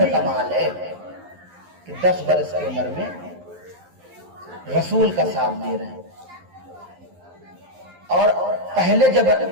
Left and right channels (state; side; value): late; left; 11 ms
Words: کمال ہے کہ 10 برس کی عمر میں رسول کا ساتھ دے رہے ہیں۔ اور پہلے جب